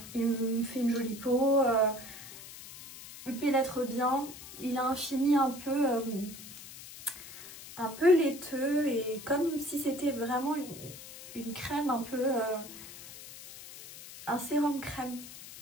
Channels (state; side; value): noise; left; hiss, 15 dB below the sound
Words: Il me fait une jolie peau, il pénètre bien. Il a un fini un peu laiteux et comme si c'était vraiment une crème un peu... un sérum crème,